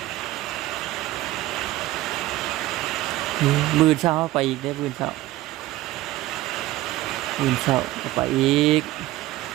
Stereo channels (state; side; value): quieter; left; 16.7 dB